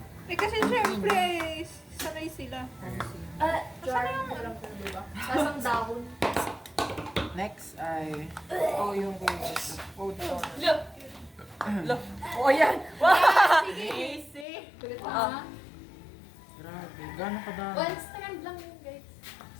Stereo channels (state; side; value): drops out; right; at 14.5 s